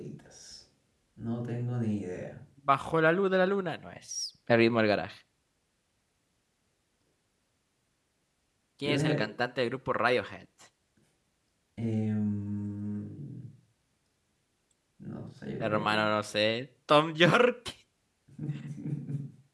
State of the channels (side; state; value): both; identical; correlation 1.00